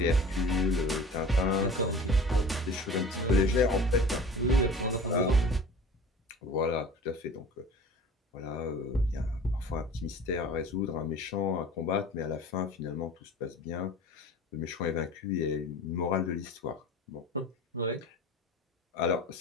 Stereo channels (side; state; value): both; normal; correlation 0.41